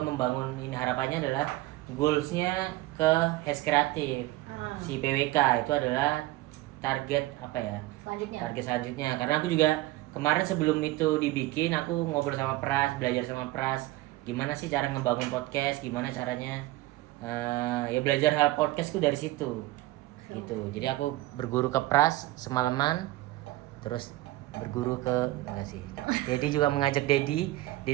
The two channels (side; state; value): left; quieter; 18.2 dB